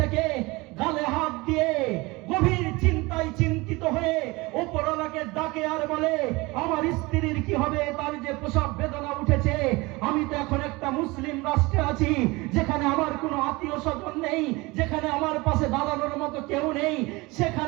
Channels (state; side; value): quieter; left; 23.3 dB